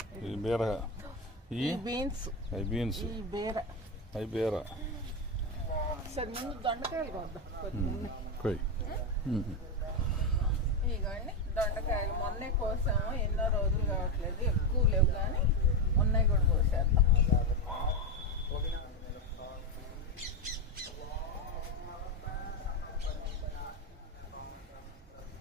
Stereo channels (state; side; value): normal; both; correlation 0.11